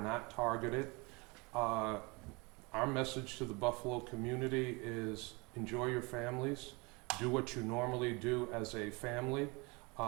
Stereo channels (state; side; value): quieter; left; 27.4 dB